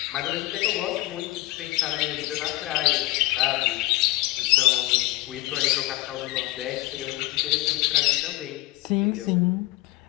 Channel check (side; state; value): right; quieter; 19.2 dB